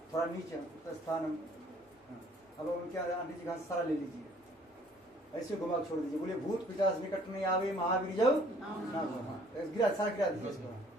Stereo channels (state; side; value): normal; both; correlation 0.58